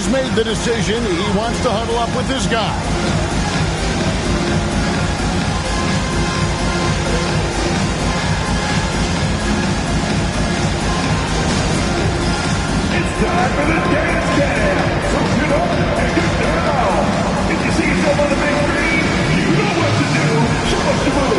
made the decision. He wants to huddle up with his guy. Time for the dance jam. So get up and get down. If you see yourself on the big screen, you know what to do. Show us the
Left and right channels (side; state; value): both; identical; correlation 1.00